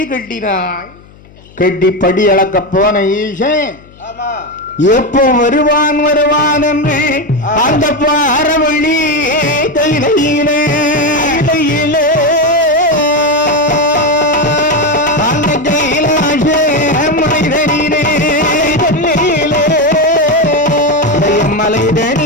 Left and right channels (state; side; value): noise; left; hum, 25 dB below the sound